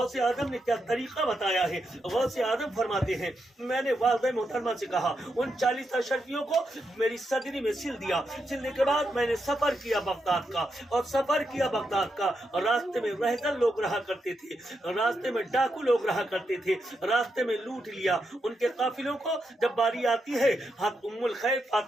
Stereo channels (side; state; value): both; normal; correlation 0.84